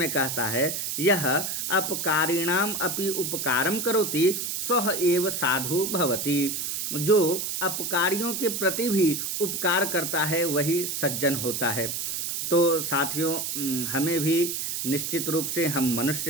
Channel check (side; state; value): right; noise; hiss, 3 dB below the sound